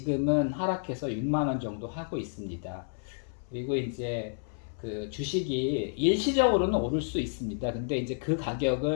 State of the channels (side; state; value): right; silent; 58 dB below the other